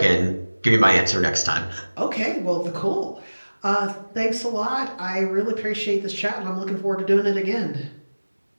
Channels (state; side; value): inverted; both; correlation -1.00